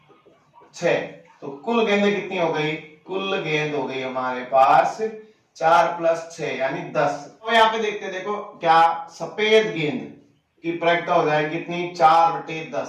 6, तो कुल गेंदें कितनी हो गई, कुल गेंद हो गई हमारे पास 4 + 6 यानी 10। तो यहाँ पे देखते हैं, देखो क्या सफेद गेंद की प्रायिकता हो जाएगी कितनी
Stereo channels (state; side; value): identical; both; correlation 1.00